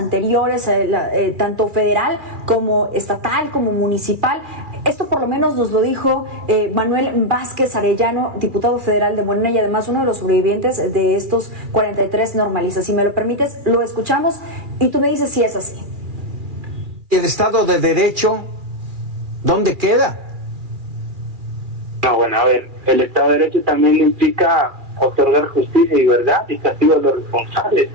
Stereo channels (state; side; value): late; left; 2.4 ms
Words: tanto federal como estatal como municipal. Esto por lo menos nos lo dijo Manuel Vázquez Arellano, diputado federal de Morena y además uno de los sobrevivientes de estos 43 normalistas. Si me lo permites, lo escuchamos y tú me dices si es así. ¿El Estado de Derecho dónde queda? No, bueno, a ver, el Estado de Derecho también implica otorgar justicia y verdad y castigo a los responsables.